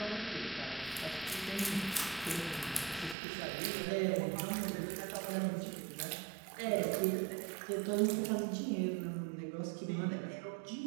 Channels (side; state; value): left; drops out; at 3.2 s